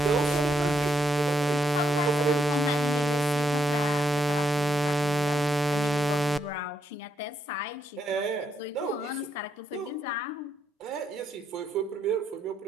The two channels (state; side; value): normal; both; correlation 0.77